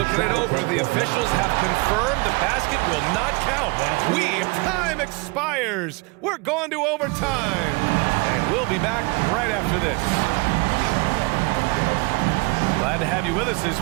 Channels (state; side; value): quieter; left; 27.3 dB